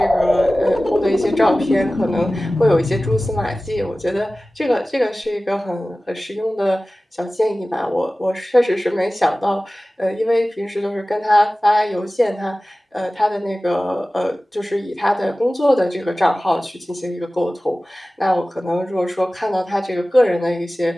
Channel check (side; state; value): both; normal; correlation 0.97